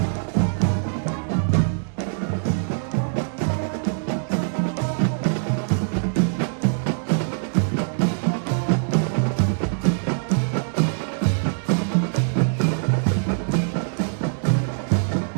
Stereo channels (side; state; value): left; silent; digital silence